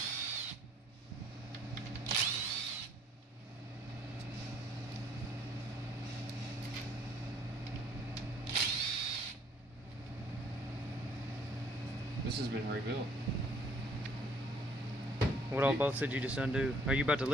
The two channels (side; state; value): both; normal; correlation 0.61